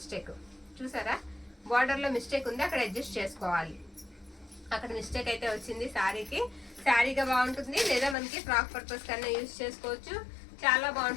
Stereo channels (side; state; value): right; drops out; at 8.2 s